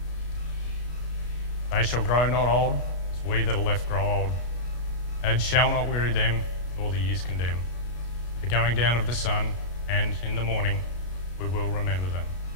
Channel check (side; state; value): right; late; 33 ms